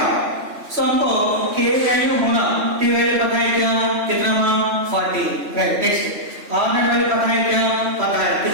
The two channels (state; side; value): late; left; 3.1 ms